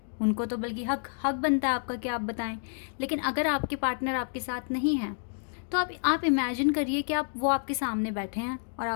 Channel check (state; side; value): silent; right; digital silence